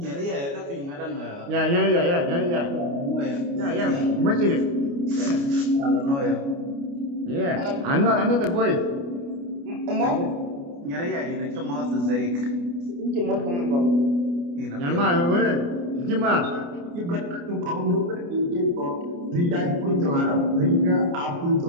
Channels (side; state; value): left; late; 29 ms